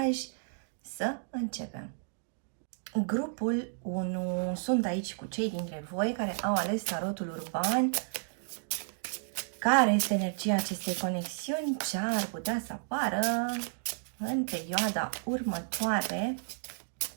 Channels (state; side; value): silent; left; digital silence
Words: Să începem. Grupul 1. Sunt aici cu cei dintre voi care au ales tarotul urban. Care este energia acestei conexiuni? Ce ar putea să apară în perioada următoare